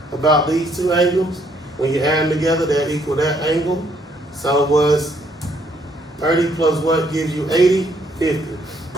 about these two angles? When you add them together, they equal that angle. So it was 30 plus what gives you 80? 50.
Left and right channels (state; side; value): normal; both; correlation 0.69